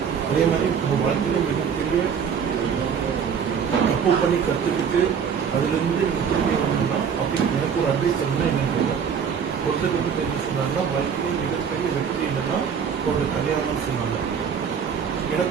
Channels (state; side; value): quieter; left; 7.1 dB